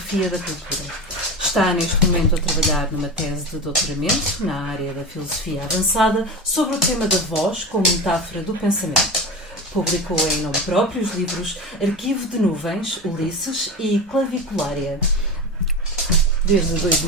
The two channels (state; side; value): normal; both; correlation 0.26